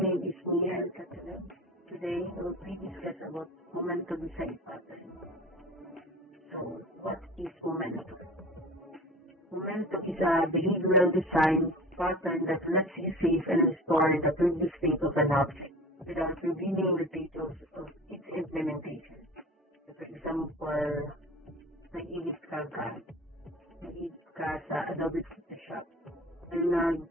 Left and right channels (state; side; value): normal; both; correlation 0.38